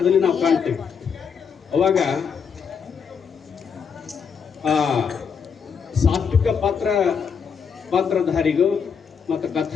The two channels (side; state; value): right; quieter; 6.5 dB